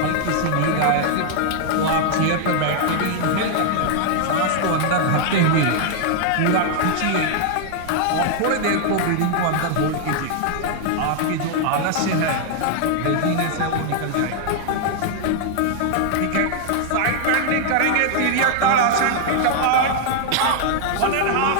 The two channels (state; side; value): different; both; correlation 0.00